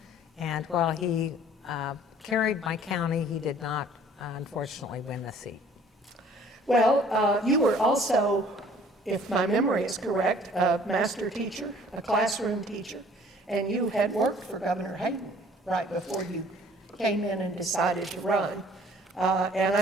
And while he carried my county, he did not, unfortunately, win the seat. Well, you were also, if my memory is correct, a master teacher, a classroom teacher, and you had worked for Governor Hayden right before you came in and decided to run. And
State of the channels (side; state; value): both; normal; correlation 0.54